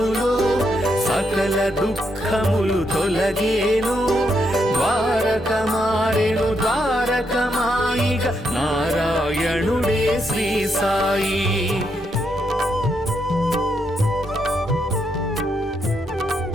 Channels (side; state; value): both; normal; correlation 0.79